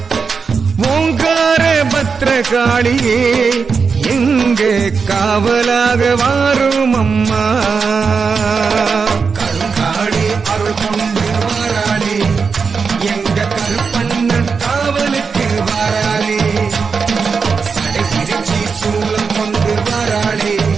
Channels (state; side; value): quieter; left; 5.3 dB